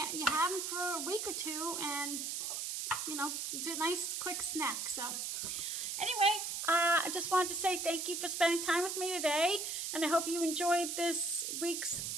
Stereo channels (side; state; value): right; noise; hiss, 3 dB below the sound